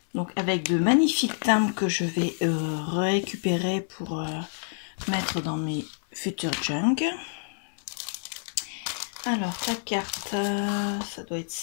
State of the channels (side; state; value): right; silent; 60 dB below the other